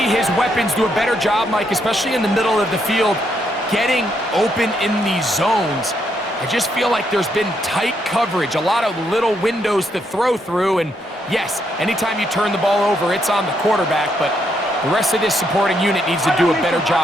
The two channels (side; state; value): both; normal; correlation 0.76